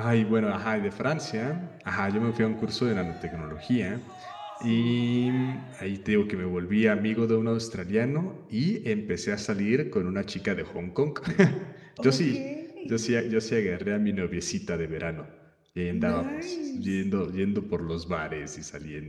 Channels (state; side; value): identical; both; correlation 1.00